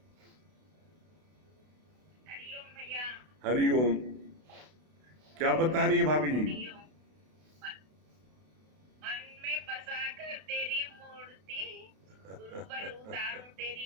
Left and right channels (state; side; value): late; left; 32 ms